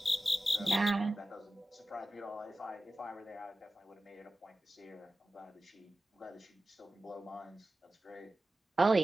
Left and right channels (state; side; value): normal; both; correlation 0.95